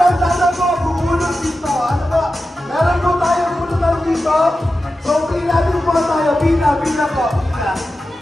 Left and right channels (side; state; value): both; normal; correlation 0.92